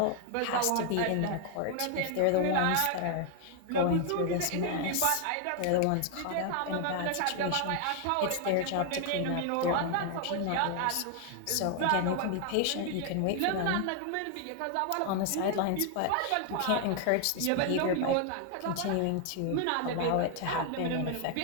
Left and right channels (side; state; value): both; different; correlation 0.00